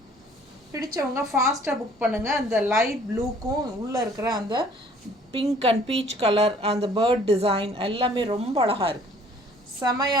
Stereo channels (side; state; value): both; normal; correlation 0.56